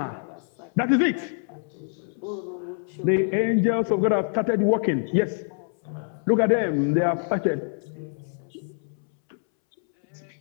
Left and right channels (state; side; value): silent; right; 61 dB below the other